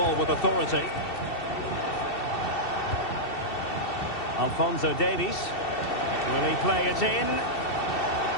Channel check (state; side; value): late; right; 2.7 ms